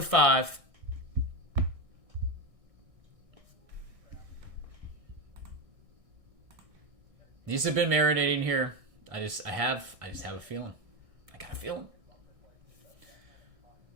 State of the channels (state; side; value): late; left; 1.6 ms